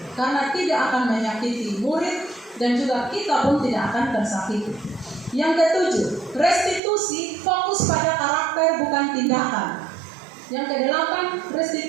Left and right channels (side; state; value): left; drops out; at 6.8 s